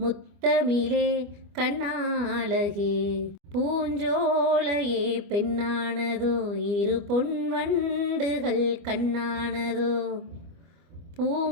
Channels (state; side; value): late; left; 25 ms